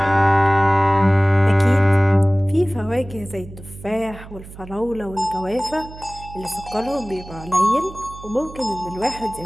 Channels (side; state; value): right; noise; hum, 16 dB below the sound